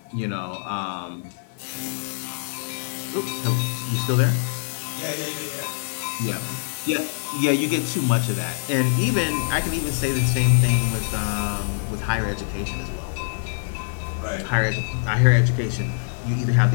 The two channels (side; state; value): right; silent; 62 dB below the other